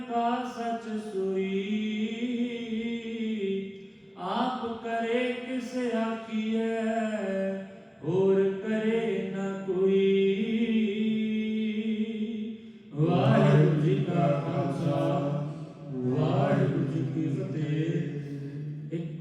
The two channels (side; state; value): both; identical; correlation 1.00